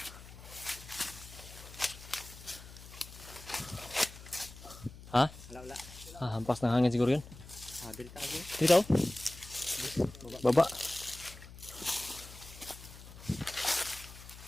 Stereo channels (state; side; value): noise; left; hum, 16 dB below the sound